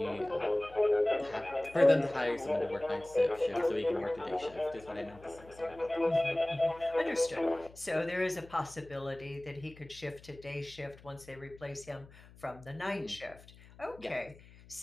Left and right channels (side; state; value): left; noise; hum, 22 dB below the sound